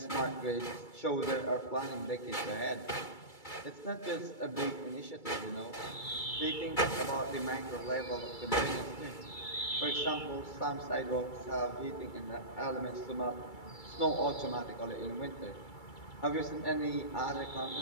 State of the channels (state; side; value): late; right; 2.3 ms